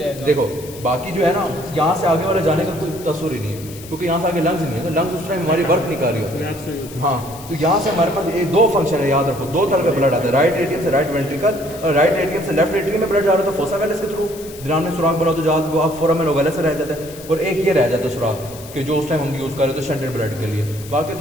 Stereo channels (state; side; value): noise; left; hiss, 17 dB below the sound